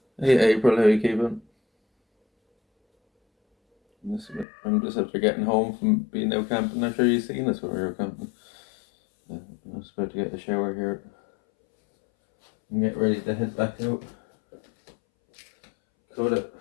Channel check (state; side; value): drops out; right; at 4.5 s